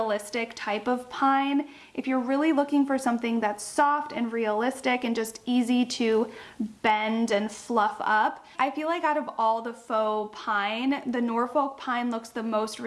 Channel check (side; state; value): both; identical; correlation 1.00